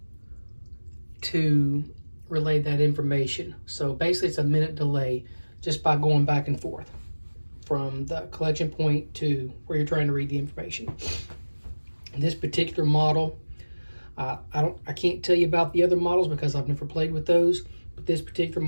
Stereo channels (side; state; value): both; inverted; correlation -1.00